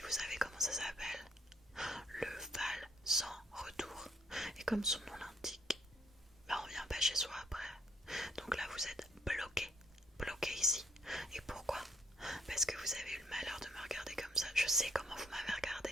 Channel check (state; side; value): normal; both; correlation 0.67